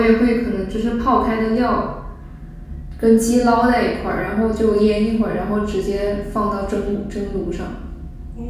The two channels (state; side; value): identical; both; correlation 1.00